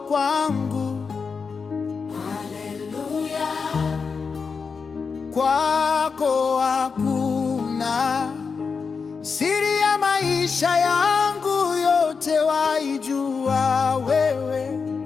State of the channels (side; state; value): right; quieter; 5.3 dB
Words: kwangu. Haleluya. Kwako hakuna siri ya maisha yangu, yote waijua wewe